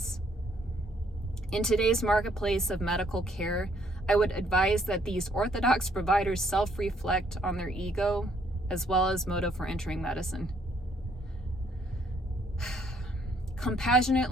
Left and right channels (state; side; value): normal; both; correlation 0.67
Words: In today's marketplace of medical care, I would advise that these orthodox providers self-reflect on their ego as well as motive for entering medicine.